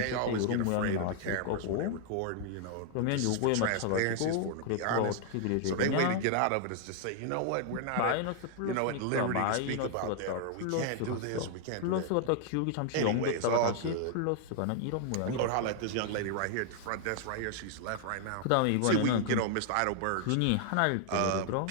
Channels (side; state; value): both; different; correlation 0.00